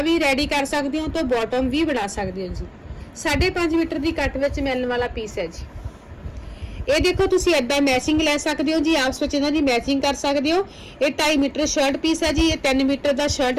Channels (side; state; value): both; identical; correlation 1.00